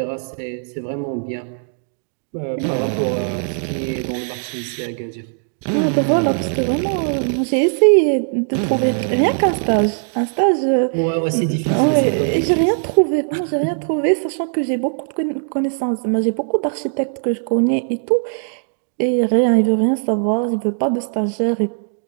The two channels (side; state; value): left; silent; digital silence